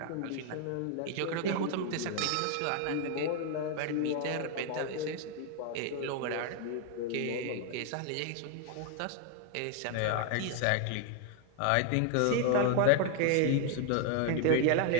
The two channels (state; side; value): different; both; correlation 0.00